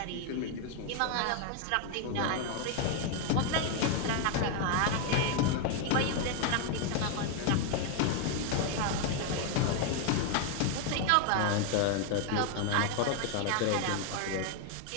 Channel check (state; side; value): different; both; correlation 0.01